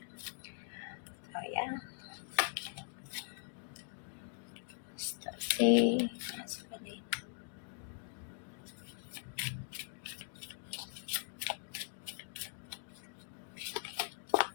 Oh ya, si maskulin.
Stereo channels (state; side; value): silent; right; digital silence